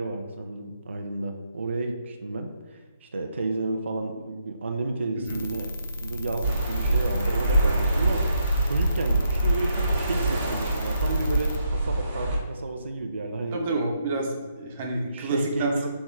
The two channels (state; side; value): inverted; both; correlation -0.77